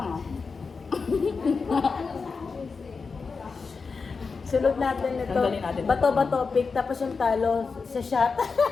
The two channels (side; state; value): right; quieter; 4.8 dB